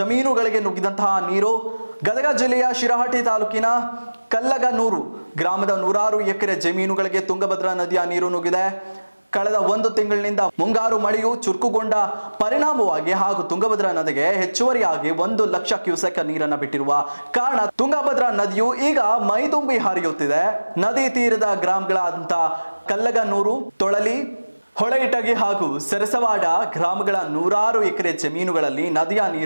ನುಗ್ಗಿದಂತಹ ನೀರು ಗದಗ ಜಿಲ್ಲೆಯ ಶಿರಹಟ್ಟಿ ತಾಲೂಕಿನ ಕಲ್ಲಗನೂರು ಗ್ರಾಮದ 100 ಎಕರೆ ಜಮೀನುಗಳಿಗೆ ತುಂಗಭದ್ರಾ ನದಿಯ ನೀರು ನುಗ್ಗಿದೆ. ಕಳೆದ 1 ತಿಂಗಳಿನಿಂದ ಮುಂಗಾರು ಮಳೆಯು ಚುರುಕುಗೊಂಡ ಪರಿಣಾಮವಾಗಿ ಹಾಗೂ ತುಂಗಭದ್ರಾ ನದಿಗೆ ಹೆಚ್ಚುವರಿಯಾಗಿ 1 ಲಕ್ಷ ಕ್ಯೂಸೆಕ್ ನೀರನ್ನು ಬಿಟ್ಟಿರುವ ಕಾರಣ ತುಂಗಭದ್ರಾ ನದಿಯು ಈಗ ಮೈದುಂಬಿ ಹರಿಯುತ್ತಿದೆ. ನದಿ ತೀರದ ಗ್ರಾಮಗಳಾದಂಥ ಕಲ್ಲಗನೂರು, ತೊಳಲಿ, ಹೊಳೆಯಿಟಗಿ ಹಾಗೂ ಸರಸವಾಡ ಗ್ರಾಮಗಳ 100 ಎಕರೆ ಜಮೀನುಗಳಲ್ಲಿ ನದಿಯ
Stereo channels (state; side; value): inverted; both; correlation -1.00